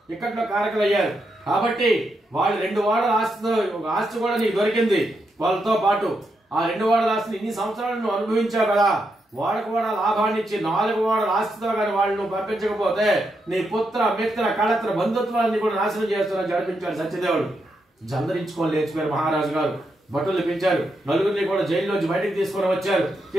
ఇక్కట్లో కారకులు అయ్యారు. కాబట్టి వాళ్ళు 2 వాడల ఆస్తి కూడా నీకు దొరికింది. వాళ్ళతో పాటు ఆ 2 వాడల ఆస్తిని ఇన్ని సంవత్సరాలు నువ్వు అనుభవించావు కదా. వాళ్ళకు కూడా లాభాన్ని ఇచ్చి 4 వాడల ఆస్తితో కానీ వాళ్ళు నువ్వు పంపించకపోతే నీ పుత్ర మిత్ర కళత్ర బంధుత్వాన్ని కూడా నాశనం చేస్తున్నా జరిపించాడు సత్యదేవుడు. జందరించుకొని లేచిపోయారు మహారాజు గారు. భటులు పిలిచారు. నలుగురిని కూడా జైల్లోంచి బయటికి తీసుకొని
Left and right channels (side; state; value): both; normal; correlation 0.82